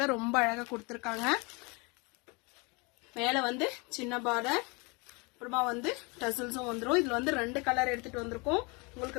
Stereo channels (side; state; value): right; quieter; 29.1 dB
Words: ரொம்ப அழகா கொடுத்துருக்காங்க. மேல வந்து சின்ன பார்டர், அப்புறமா வந்து டசல்ஸும் வந்துடும். இதுல வந்து 2 கலர் எடுத்துட்டு வந்திருக்கோம்.